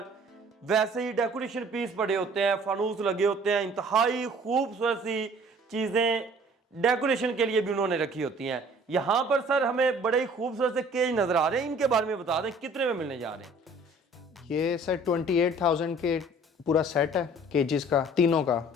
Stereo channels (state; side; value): normal; both; correlation 0.53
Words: वैसे ही डेकोरेशन पीस पड़े होते हैं, फानूस लगे होते हैं, इंतहाई खूबसूरत सी चीजें डेकोरेशन के लिए भी उन्होंने रखी होती हैं। यहाँ पर सर हमें बड़े ही खूबसूरत से केज नजर आ रहे हैं, इनके बारे में बता दें कितने में मिलने जा रहे हैं? ये सर 28,000 के पूरा सेट है केजीज का, तीनों